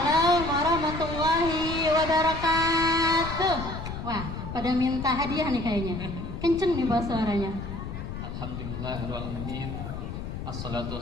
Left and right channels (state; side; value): noise; left; rumble, 7 dB below the sound